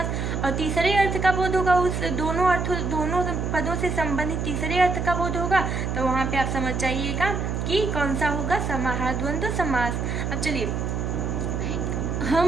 और तीसरे अर्थ का बोध होगा, उस दोनों पदों से संबंधित तीसरे अर्थ का बोध होगा, तो वहाँ पर आप समझ जाइएगा कि कौन सा होगा समाहार द्वंद्व समास। अब चलिए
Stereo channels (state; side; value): noise; right; hum, 2 dB below the sound